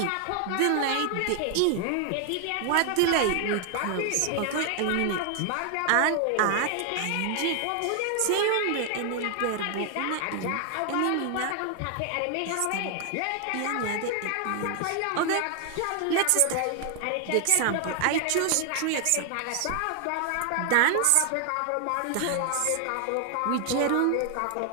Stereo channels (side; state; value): both; different; correlation 0.00